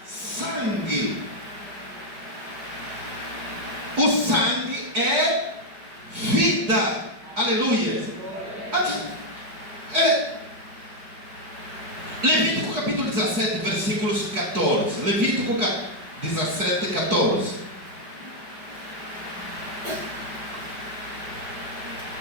sangue. O sangue é vida. Aleluia. Levítico capítulo 17, versículos 14. Levítico 17, 14.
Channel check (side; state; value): left; late; 5.1 ms